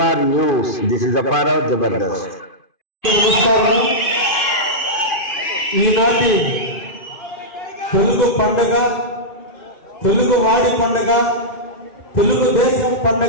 news. This is Apparao Jabardasth. ఈనాటి తెలుగు పండుగ, తెలుగు వాడి పండుగ, తెలుగు దేశం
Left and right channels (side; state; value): right; late; 2.5 ms